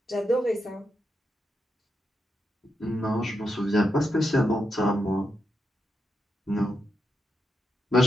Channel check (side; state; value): both; normal; correlation 0.85